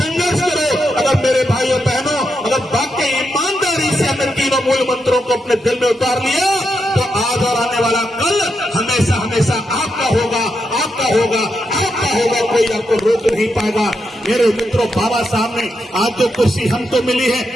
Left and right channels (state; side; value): normal; both; correlation 0.83